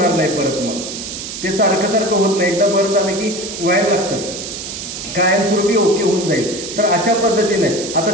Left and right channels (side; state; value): right; noise; hiss, 8 dB below the sound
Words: नाही परत. मग ते सारखं सारखं होत नाही, एकदा बरं झालं की व्हायला लागतं, कायमस्वरूपी ओके होऊन जाईल. तर अशा पद्धतीने